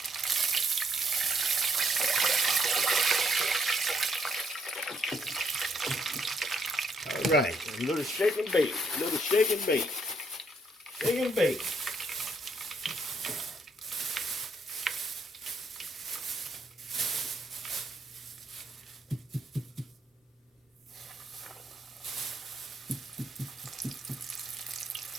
All right, a little shake and bake, a little shake and bake, shake and bake.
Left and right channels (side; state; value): both; normal; correlation 0.72